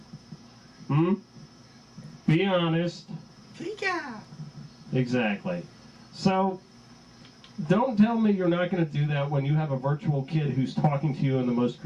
Be honest. Pika! Exactly. So, Don't tell me you're not going to do that when you have a virtual kid who's talking to you in the most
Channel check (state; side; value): identical; both; correlation 1.00